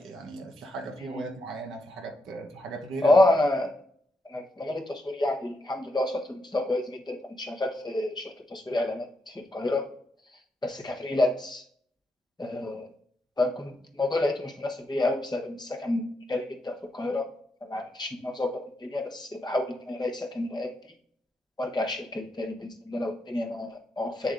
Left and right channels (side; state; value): both; normal; correlation 0.82